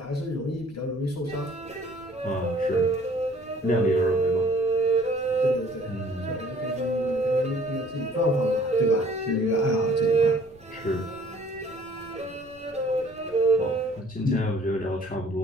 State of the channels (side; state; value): left; noise; rumble, 26 dB below the sound